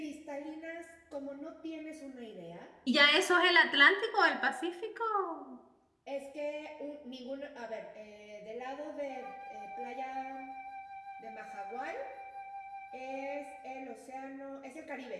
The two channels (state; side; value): identical; both; correlation 1.00